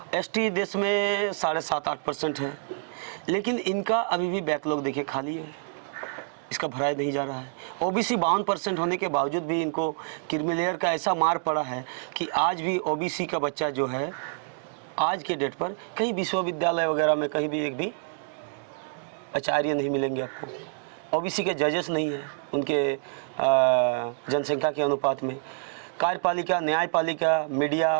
ST देश में 7.5-8% है, लेकिन इनका अभी भी बैकलॉग देखिए खाली है, इसका भराया नहीं जा रहा है। OBC 52% होने के बावजूद भी इनको क्रीमी का ऐसा मार पड़ा है कि आज भी OBC का बच्चा जो है आज के डेट पर कहीं विश्वविद्यालय वगैरह में कहीं भी एक भी आचार्य नहीं मिलेंगे आपको। OBC के जजेस नहीं हैं उनके जनसंख्या के अनुपात में। कार्यपालिका, न्यायपालिका, मीडिया,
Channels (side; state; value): left; silent; digital silence